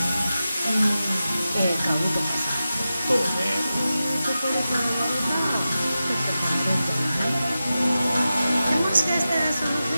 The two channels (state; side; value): inverted; both; correlation -0.93